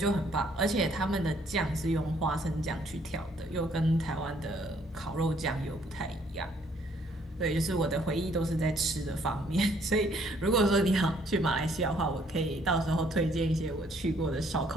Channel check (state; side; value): normal; both; correlation 0.65